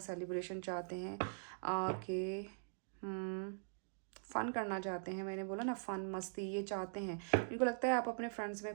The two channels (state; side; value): silent; left; digital silence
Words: सेलिब्रेशन चाहते हैं, के फ़न करना चाहते हैं। मैंने बोला ना, फ़न, मस्ती ये चाहते हैं। इनको लगता है आप अपने फ्रेंड्स